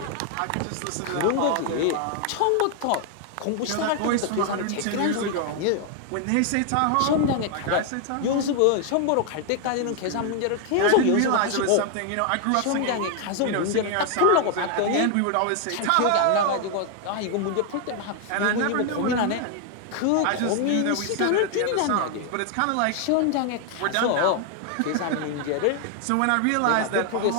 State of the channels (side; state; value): both; different; correlation 0.00